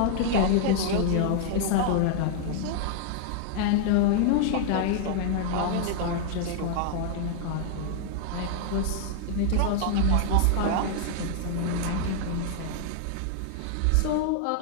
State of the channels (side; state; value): both; different; correlation 0.00